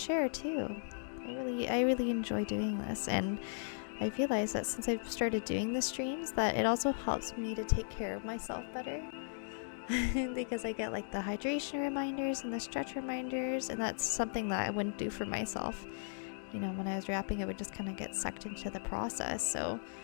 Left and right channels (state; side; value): silent; right; digital silence